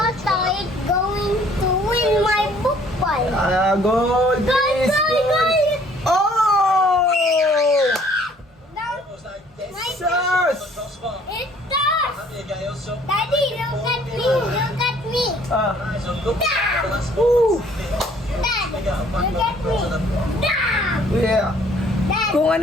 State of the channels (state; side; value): normal; both; correlation 0.58